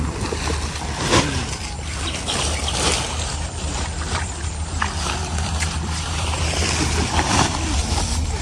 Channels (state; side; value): identical; both; correlation 1.00